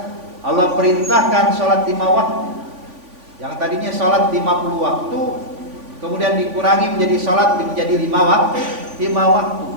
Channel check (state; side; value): late; left; 3.5 ms